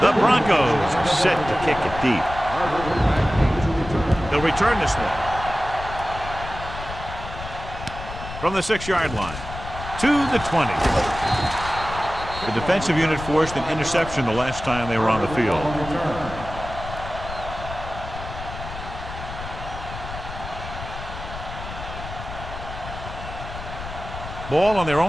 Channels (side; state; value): left; noise; rumble, 10 dB below the sound